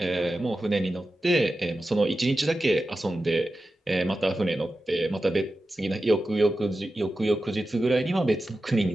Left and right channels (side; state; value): both; normal; correlation 0.92